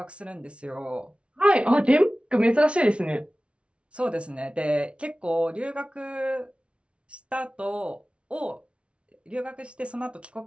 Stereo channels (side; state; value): left; late; 0.060 ms